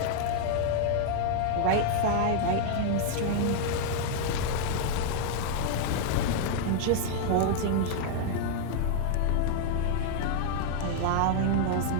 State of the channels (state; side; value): different; both; correlation -0.01